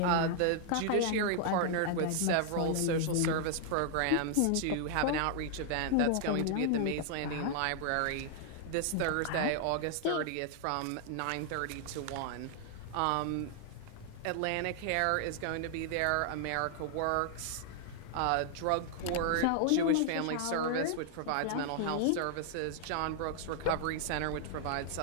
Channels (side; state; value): both; different; correlation 0.00